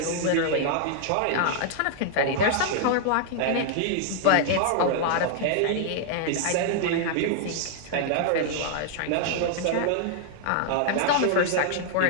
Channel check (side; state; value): both; different; correlation 0.00